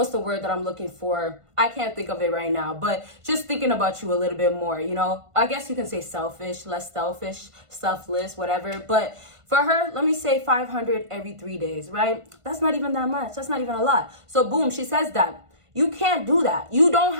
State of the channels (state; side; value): late; left; 1.5 ms